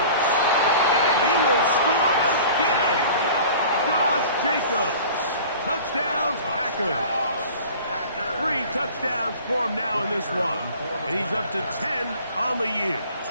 And he will score again. Josh Jacobs. Touchdowns, Packers. 3 touchdowns for him now in this one. And he's up to 10 on the year.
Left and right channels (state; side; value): inverted; both; correlation -0.43